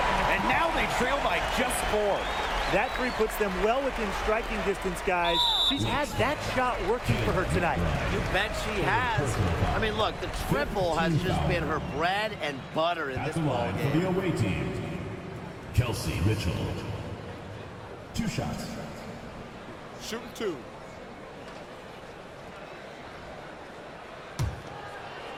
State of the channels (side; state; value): both; identical; correlation 1.00